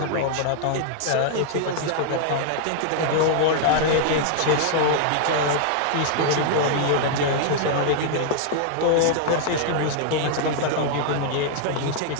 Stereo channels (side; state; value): both; different; correlation -0.01